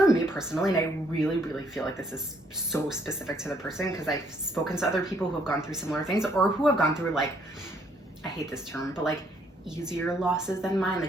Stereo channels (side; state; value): both; normal; correlation 0.68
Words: me personally, and I really, really feel like this is so specific to the person because I've spoken to other people who have gone through similar things or who have gone through like, I hate this term, but like easier losses than mine,